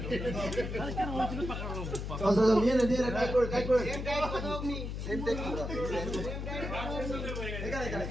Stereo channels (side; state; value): left; noise; hum, 5 dB below the sound